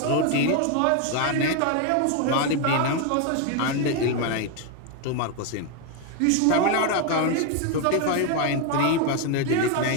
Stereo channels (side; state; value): both; different; correlation 0.01